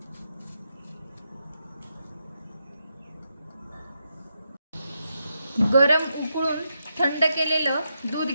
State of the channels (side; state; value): both; inverted; correlation -0.84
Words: गरम उकळून थंड केलेलं दूध